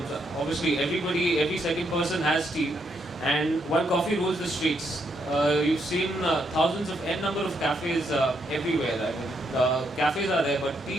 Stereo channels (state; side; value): normal; both; correlation 0.77